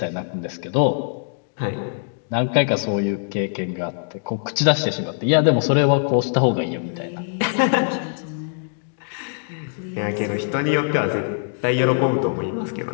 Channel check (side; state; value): right; silent; digital silence